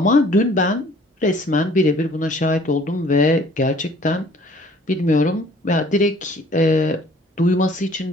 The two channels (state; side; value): normal; both; correlation 0.55